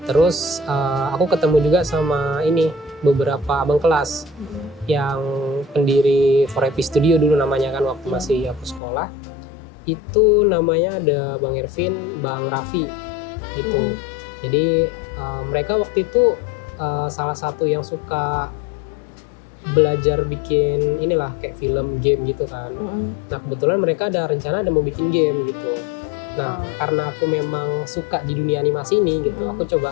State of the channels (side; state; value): right; drops out; at 8.8 s